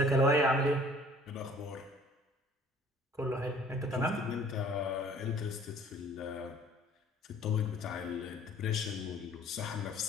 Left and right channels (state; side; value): normal; both; correlation 0.53